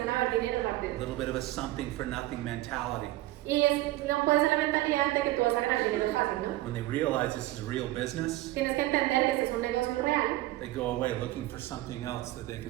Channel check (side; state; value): left; quieter; 17.1 dB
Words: a ver dinero A rápido. little bit of a something for nothing mentality. Y no puede ser la mentalidad de que tú vas a ganar dinero fácil, ¿no? When they realize this is real business, Tienes que entender que este es un negocio real. they go away looking for something else that they